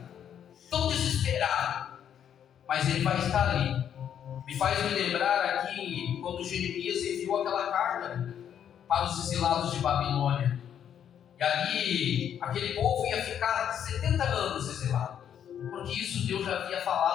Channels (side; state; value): right; quieter; 9.2 dB